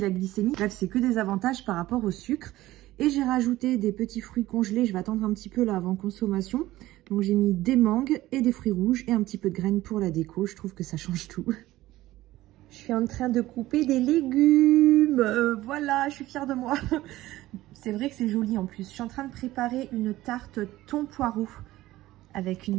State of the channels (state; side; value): quieter; left; 16.5 dB